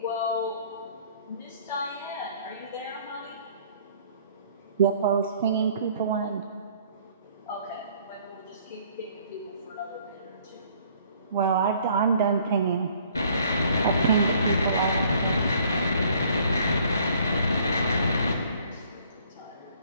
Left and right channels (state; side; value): inverted; both; correlation -0.59